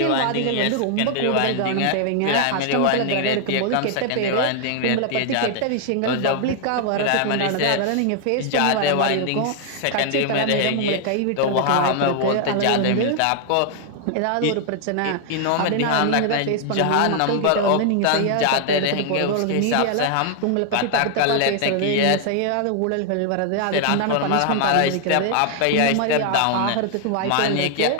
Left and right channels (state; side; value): different; both; correlation 0.00